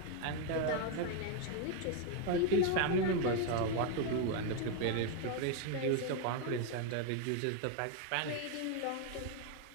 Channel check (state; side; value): different; both; correlation 0.01